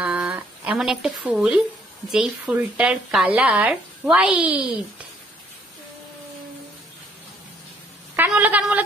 এমন একটা ফুল যেই ফুলটার কালার হোয়াইট। কান বলো, কান বলো,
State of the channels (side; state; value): both; normal; correlation 0.65